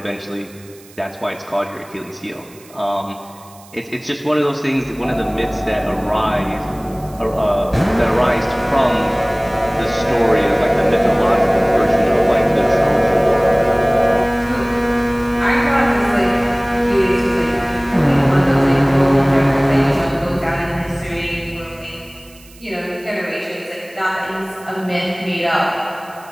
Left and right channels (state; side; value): noise; right; hiss, 24 dB below the sound